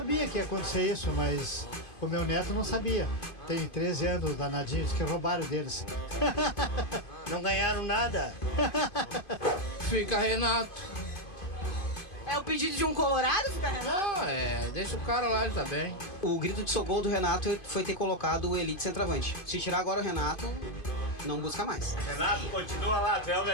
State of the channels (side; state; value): right; late; 2.5 ms